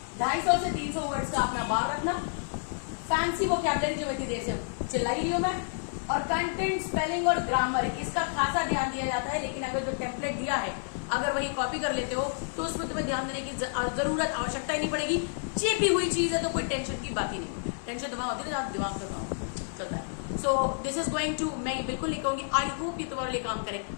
250 से 300 वर्ड्स का अपना बार रखना, फैंसी वोकैबुलरी जो इतनी देर से चिल्लाई रही हूं मैं, और कंटेंट, स्पेलिंग और ग्रामर इसका खासा ध्यान दिया जाता है। लेकिन अगर जो टेम्पलेट दिया है अगर वही कॉपी कर लेते हो तो उसमें तुम्हें ध्यान देने की जरूरत, आवश्यकता ही नहीं पड़ेगी। चेपी हुई चीज है तो कोई टेंशन की बात ही नहीं, टेंशन दिमाग होती है, दिमाग का चलता है। So this is going to, मैं बिल्कुल नहीं कहूंगी आई होप ये तुम्हारे लिए काम करे,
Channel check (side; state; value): right; silent; 57 dB below the other